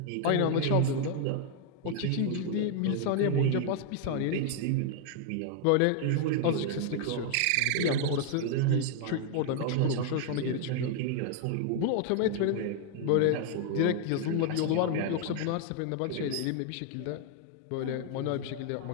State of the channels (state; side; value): different; both; correlation 0.00